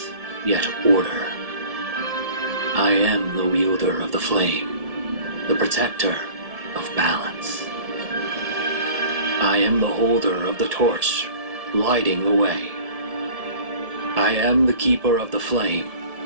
yet order. I am the wielder of the flame, the protector of balance. I am the holder of the torch, lighting the way. I am the keeper of the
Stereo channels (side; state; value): left; late; 1.7 ms